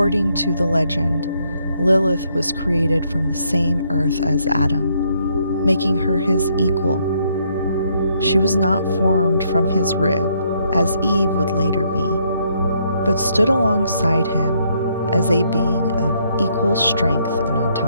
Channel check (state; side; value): inverted; both; correlation -0.72